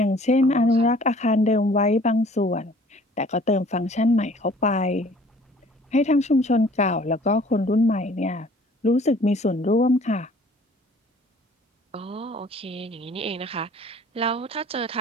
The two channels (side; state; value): both; normal; correlation 0.53